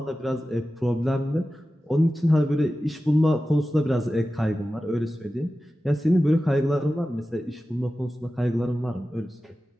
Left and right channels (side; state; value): both; normal; correlation 0.94